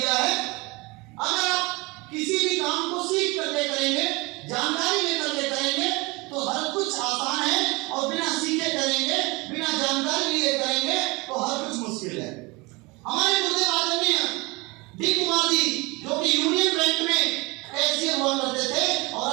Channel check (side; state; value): left; quieter; 25.1 dB